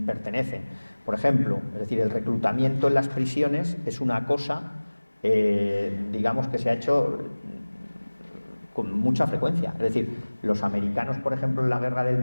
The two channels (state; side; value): inverted; both; correlation -1.00